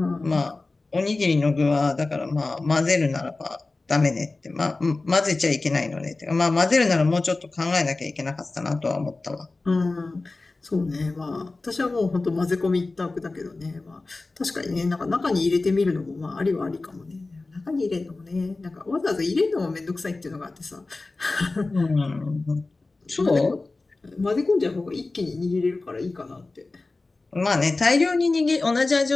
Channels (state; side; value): quieter; right; 3.4 dB